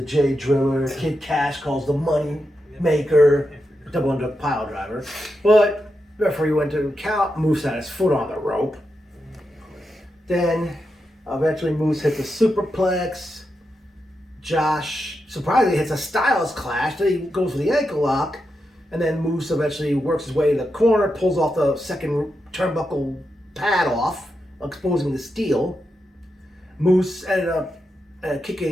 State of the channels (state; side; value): normal; both; correlation 0.87